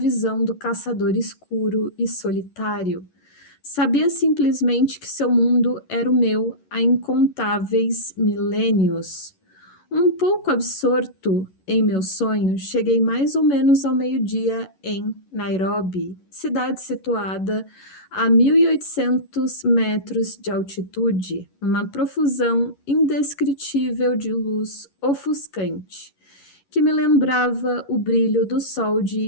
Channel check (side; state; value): right; late; 11 ms